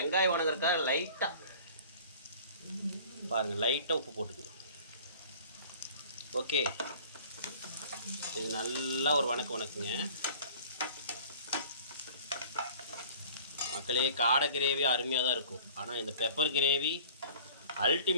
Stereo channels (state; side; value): inverted; both; correlation -0.48